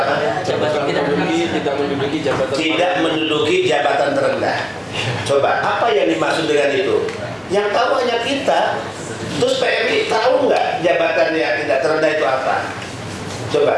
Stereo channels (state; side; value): identical; both; correlation 1.00